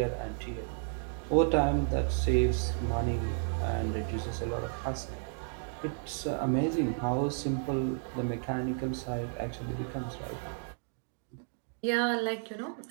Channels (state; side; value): silent; left; digital silence